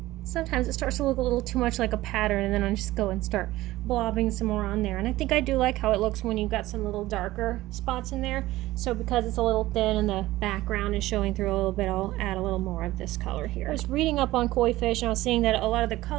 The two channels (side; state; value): left; quieter; 17.0 dB